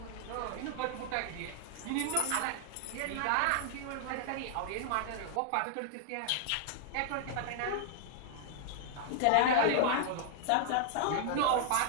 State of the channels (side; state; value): both; different; correlation -0.01